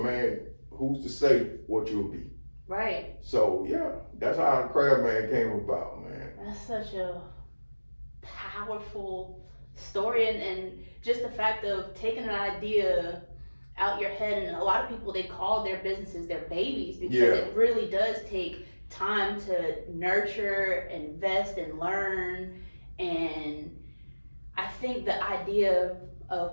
man, who's to say what you'll be? Right. So yeah, that's how the Crab Man came about, man. That's such a powerful story, and just the fact of taking an idea out your head, and a lot of people, they call their businesses their babies because it really does take time to nurture, invest, and learn. And I think the idea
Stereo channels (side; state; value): both; inverted; correlation -1.00